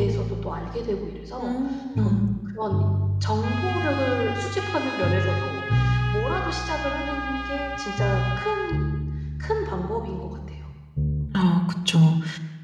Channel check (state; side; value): identical; both; correlation 1.00